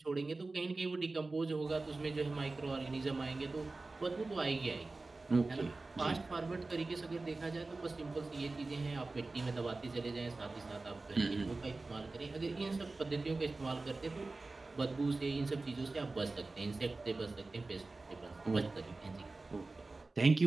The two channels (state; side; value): quieter; left; 3.4 dB